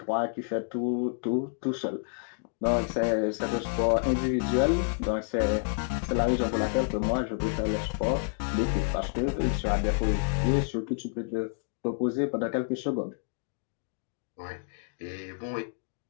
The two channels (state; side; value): silent; right; 58 dB below the other